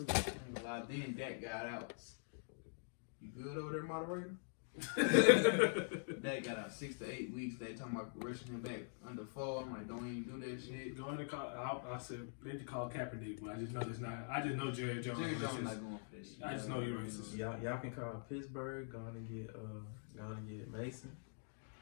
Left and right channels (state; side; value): silent; right; digital silence